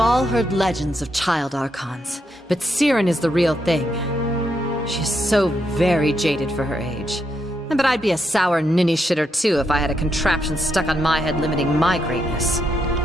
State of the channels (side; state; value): both; normal; correlation 0.80